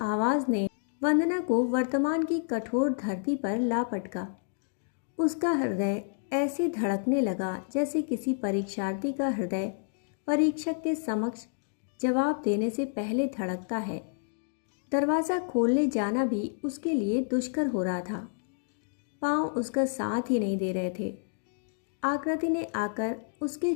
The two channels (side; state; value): right; silent; digital silence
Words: आवाज़ ने वंदना को वर्तमान की कठोर धरती पर ला पटका। उसका हृदय ऐसे धड़कने लगा जैसे किसी परीक्षार्थी का हृदय परीक्षक के समक्ष जवाब देने से पहले धड़कता है। दरवाज़ा खोलने जाना भी उसके लिए दुष्कर हो रहा था। पाँव उसका साथ ही नहीं दे रहे थे। आकृति ने आकर उसके